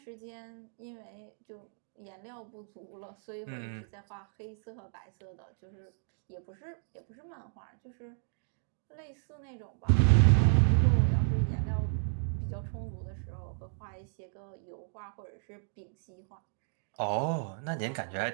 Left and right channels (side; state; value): left; silent; digital silence